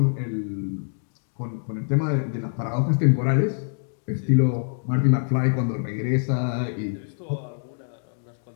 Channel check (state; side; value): silent; right; digital silence